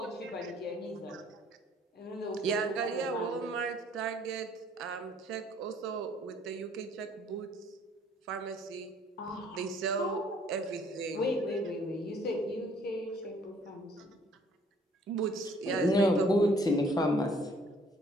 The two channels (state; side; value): normal; both; correlation 0.60